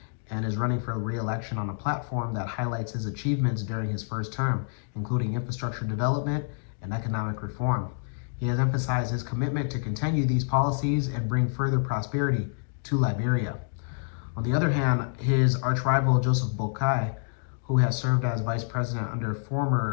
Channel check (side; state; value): right; silent; digital silence